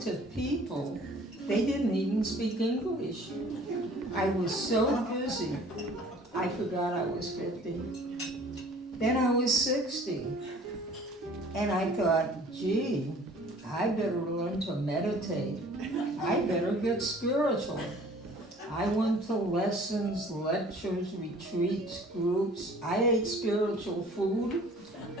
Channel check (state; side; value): normal; both; correlation 0.51